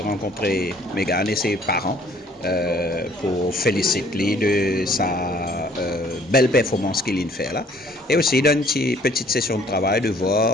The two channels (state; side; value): normal; both; correlation 0.58